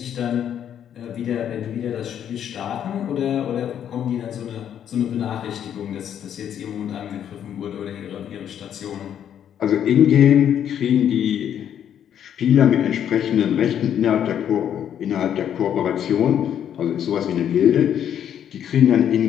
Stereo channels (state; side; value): quieter; right; 9.5 dB